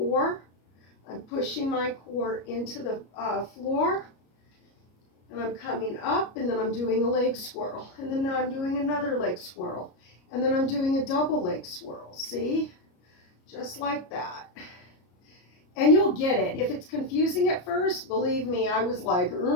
I'm pushing my core into the floor, and I'm coming up, and then I'm doing a leg swirl, and then I'm doing another leg swirl, and then I'm doing a double leg swirl. See? Just like that. And you'll get it. If it's confusing at first, believe me, I was like,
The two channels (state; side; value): late; right; 33 ms